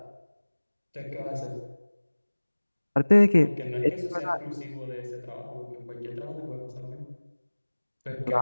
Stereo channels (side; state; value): both; inverted; correlation -1.00